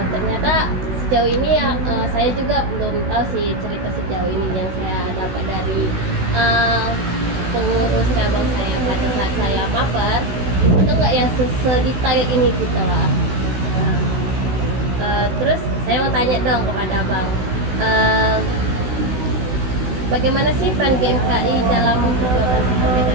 ternyata sejauh ini ya saya juga belum tahu sih cerita sejauh ini yang saya dapat dari pengurus cabang saya pada saat saya maper. Itu nggak ya sedetail ini gitu lah. Terus saya mau tanya dong kepada Bang, bagaimana sih peran GMKI dalam perjuangan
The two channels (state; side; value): late; left; 16 ms